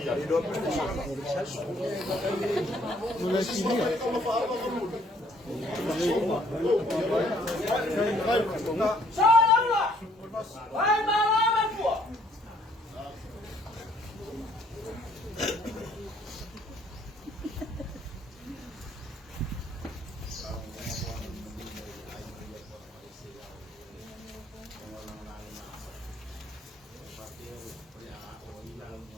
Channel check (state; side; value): normal; both; correlation 0.63